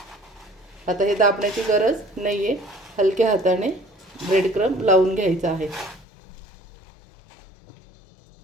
आता हे दाबण्याची गरज नाही आहे, हलक्या हाताने ब्रेड क्रम लावून घ्यायचा आहे.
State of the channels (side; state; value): right; drops out; at 6.1 s